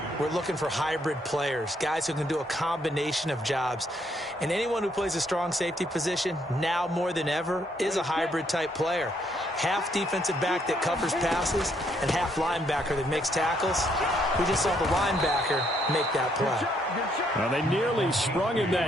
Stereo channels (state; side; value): normal; both; correlation 0.71